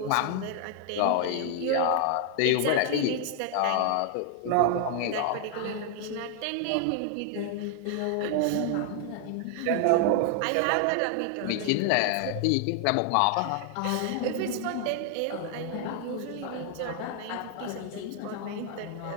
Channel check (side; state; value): both; different; correlation 0.00